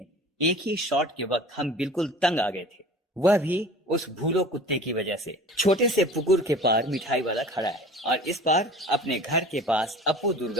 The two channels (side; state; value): both; normal; correlation 0.42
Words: एक ही शॉट के वक्त हम बिल्कुल तंग आ गए थे, वह भी उस भूलो कुत्ते की वजह से। छोटे से पुकुर के पार मिठाई वाला खड़ा है और इस पार अपने घर के पास अपू